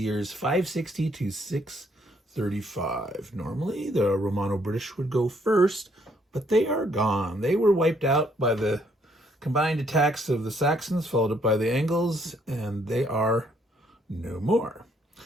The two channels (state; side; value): normal; both; correlation 0.68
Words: 560 to 635. Normally the Romano-British would go first, but they are gone. They were wiped out by the combined attacks of the Saxons, followed up by the Angles, and they are no more.